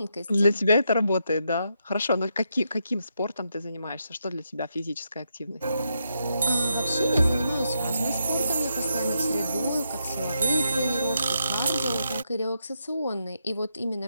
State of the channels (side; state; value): both; inverted; correlation -0.82